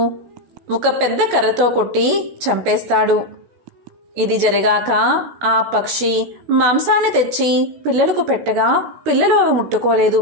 ఒక పెద్ద కర్రతో కొట్టి చంపేస్తాడు. ఇది జరిగాక ఆ పక్షి మాంసాన్ని తెచ్చి పిల్లలకు పెట్టగా పిల్లలు అవి ముట్టుకోలేదు.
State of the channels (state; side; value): late; left; 16 ms